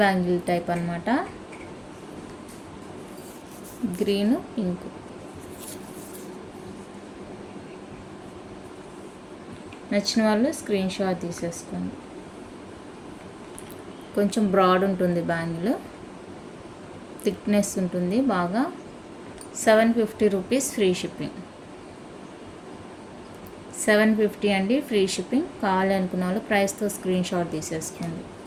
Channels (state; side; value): identical; both; correlation 1.00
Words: బ్యాంగిల్ టైప్ అనమాట. Green, pink. నచ్చిన వాళ్ళు స్క్రీన్ షాట్ తీసేసుకోండి. కొంచెం బ్రాడ్ ఉంటుంది బ్యాంగిల్, థిక్నెస్ ఉంటుంది బాగా. 750 రూపీస్ ఫ్రీ షిప్పింగ్. 750 అండి, ఫ్రీ షిప్పింగ్. కావాలి అనుకున్న వాళ్ళు ప్రైస్తో స్క్రీన్ షాట్ తీసేసుకోండి.